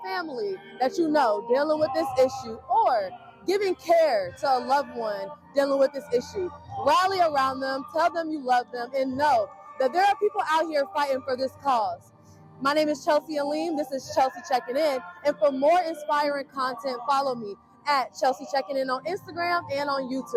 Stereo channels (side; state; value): both; identical; correlation 1.00